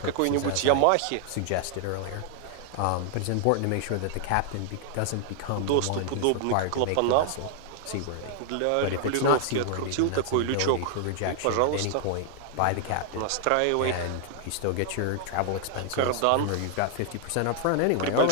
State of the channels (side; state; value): both; different; correlation 0.00